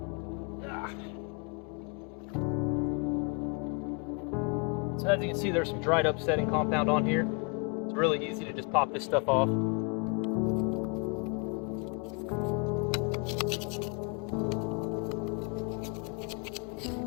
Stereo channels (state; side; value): quieter; right; 34.2 dB